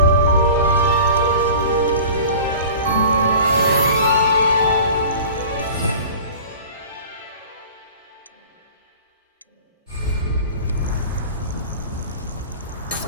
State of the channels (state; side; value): inverted; both; correlation -0.40